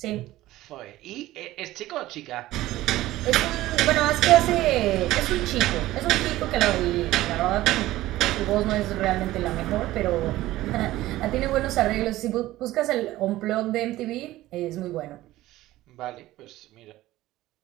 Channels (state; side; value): quieter; left; 16.2 dB